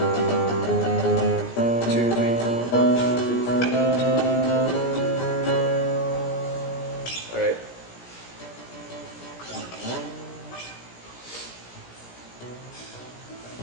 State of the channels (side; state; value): right; late; 17 ms